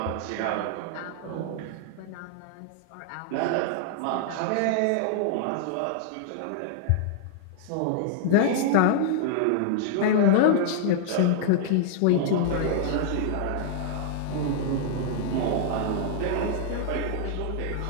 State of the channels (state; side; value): different; both; correlation -0.01